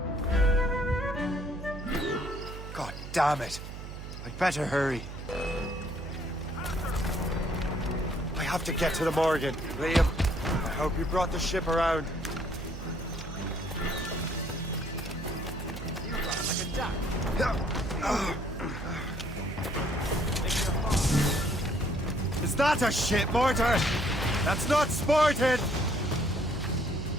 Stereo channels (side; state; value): right; noise; hum, 10 dB below the sound